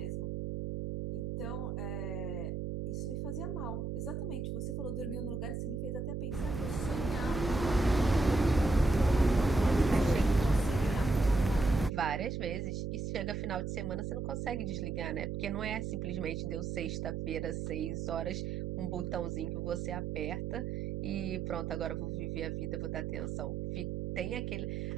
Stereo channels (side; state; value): right; noise; hum, 3 dB below the sound